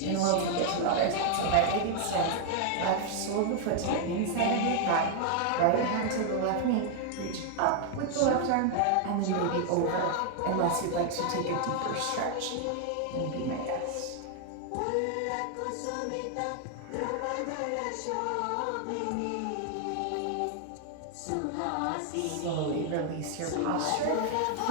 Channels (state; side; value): different; both; correlation 0.00